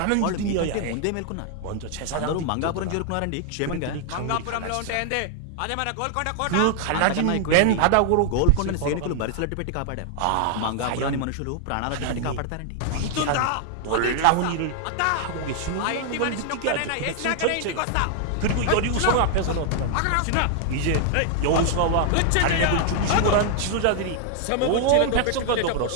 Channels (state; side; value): different; both; correlation 0.00